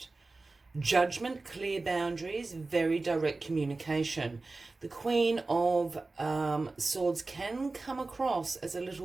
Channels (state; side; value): quieter; left; 3.5 dB